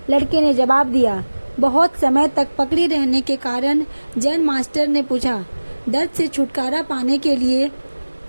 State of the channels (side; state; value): both; inverted; correlation -1.00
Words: लड़के ने जवाब दिया। बहुत समय तक पकड़े रहने के कारण जैन मास्टर ने पूछा, दर्द से छुटकारा पाने के लिए